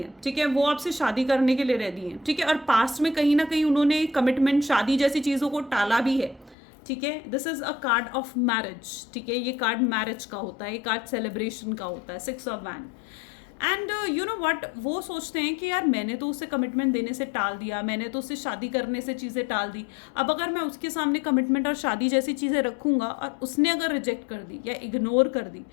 ठीक है, वो आपसे शादी करने के लिए रेडी है, ठीक है। और पास्ट में कहीं ना कहीं उन्होंने कमिटमेंट, शादी जैसी चीज़ों को टाला भी है, ठीक है। This is a card of marriage, ठीक है, ये कार्ड मैरिज का होता है, ये कार्ड सेलिब्रेशन का होता है, 6 of wand. And you know what, वो सोचते हैं कि यार मैंने तो उसे कमिटमेंट देने से टाल दिया, मैंने तो उससे शादी करने से चीज़ें टाल दी, अब अगर मैं उसके सामने कमिटमेंट और शादी जैसी चीज़ें रखूंगा और उसने अगर रिजेक्ट कर दी या इग्नोर कर दी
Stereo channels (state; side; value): drops out; right; at 6.6 s